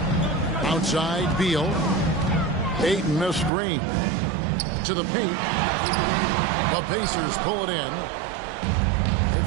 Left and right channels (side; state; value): left; drops out; at 3.5 s